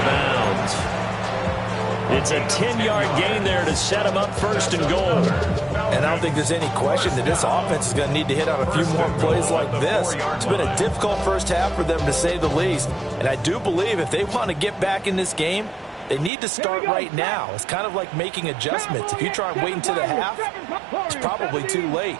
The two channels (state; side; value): drops out; left; at 16.3 s